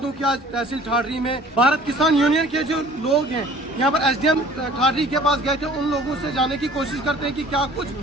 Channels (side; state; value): both; normal; correlation 0.50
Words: कि आज तहसील ठाठरी में भारत किसान यूनियन के जो लोग हैं यहाँ पर एसडीएम ठाठरी के पास गए थे। उन लोगों से जाने की कोशिश करते हैं कि क्या कुछ